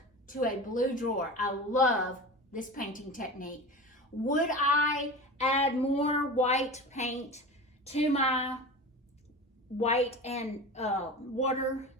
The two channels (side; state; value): both; normal; correlation 0.31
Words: to a blue drawer. I love this painting technique. Would I add more white paint to my white and water